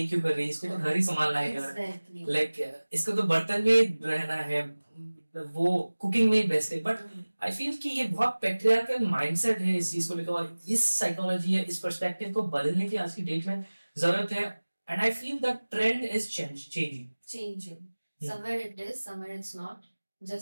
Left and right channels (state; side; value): inverted; both; correlation -1.00